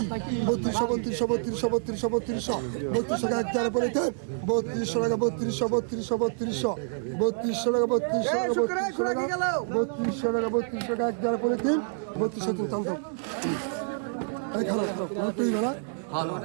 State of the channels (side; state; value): left; silent; 60 dB below the other